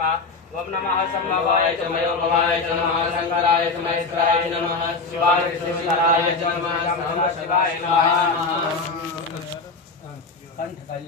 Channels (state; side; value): quieter; right; 4.1 dB